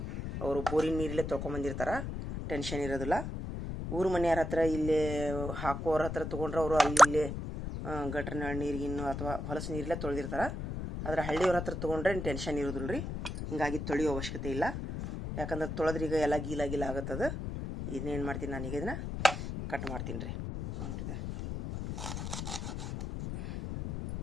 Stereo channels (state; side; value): noise; left; rumble, 5 dB below the sound